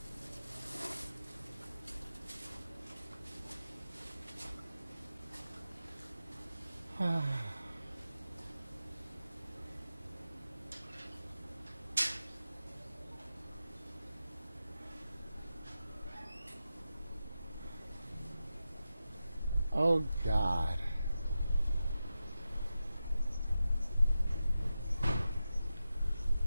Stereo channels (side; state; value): both; inverted; correlation -0.91